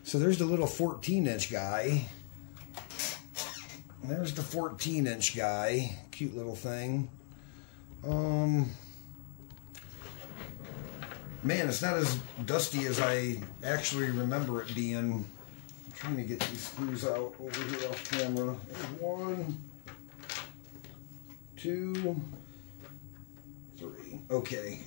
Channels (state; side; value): silent; right; digital silence